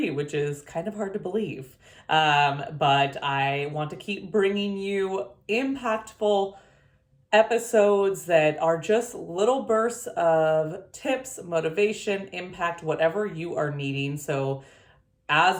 which is kind of hard to believe. But I want to keep bringing you impactful episodes that are just little bursts of tips, motivation, impact, whatever you are needing. So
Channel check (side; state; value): both; identical; correlation 1.00